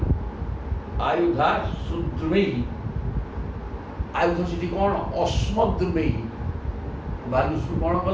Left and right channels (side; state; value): both; identical; correlation 1.00